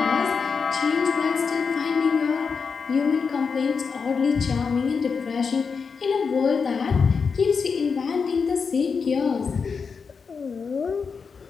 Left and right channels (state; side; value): quieter; right; 5.5 dB